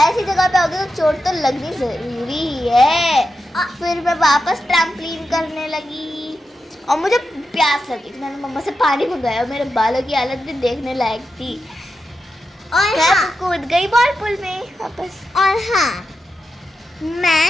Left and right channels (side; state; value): both; normal; correlation 0.89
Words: जगह पे आओगे तो चोट तो लगनी ज़रूरी है। फिर मैं वापस ट्रैम्पलिन करने लगी और मुझे प्यास लगी, मैंने मम्मा से पानी मंगाया। मेरे बालों की हालत भी देखने लायक थी। और मैं हाँ, कूद गई बॉल पूल में वापस। और हाँ, मैं